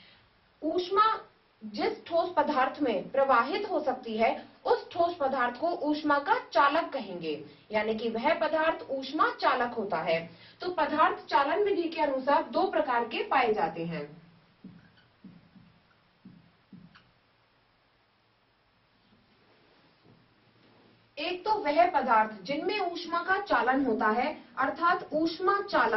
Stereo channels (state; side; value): identical; both; correlation 1.00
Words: ऊष्मा जिस ठोस पदार्थ में प्रवाहित हो सकती है, उस ठोस पदार्थ को ऊष्मा का चालक कहेंगे, यानी कि वह पदार्थ ऊष्मा चालक होता है। तो पदार्थ चालन विधि के अनुसार दो प्रकार के पाए जाते हैं। एक तो वह पदार्थ जिनमें ऊष्मा का चालन होता है, अर्थात ऊष्मा